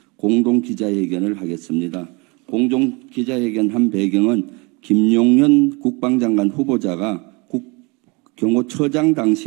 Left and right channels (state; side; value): quieter; left; 28.2 dB